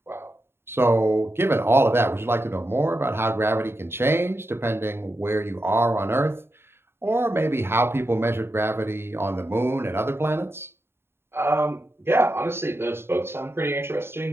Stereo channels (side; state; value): left; late; 0.11 ms